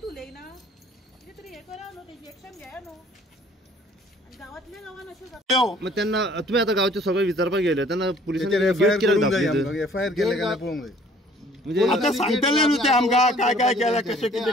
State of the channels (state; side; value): normal; both; correlation 0.56